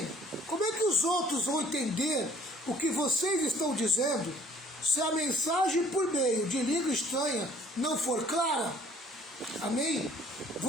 como é que os outros vão entender o que vocês estão dizendo se a mensagem por meio de língua estranha não for clara? Amém?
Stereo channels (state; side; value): normal; both; correlation 0.57